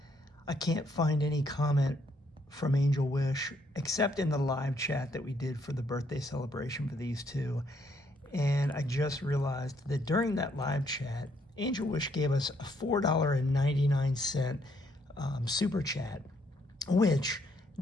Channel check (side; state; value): both; normal; correlation 0.71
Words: I can't find any comment from Angel Wish except in the live chat that we did for the birthday celebration for these two. And I just realized that during that live chat, Angel Wish gave us a $4.99 super chat, which